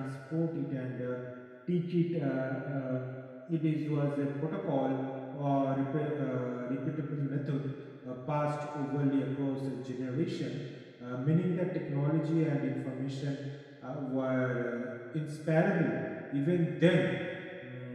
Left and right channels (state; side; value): identical; both; correlation 1.00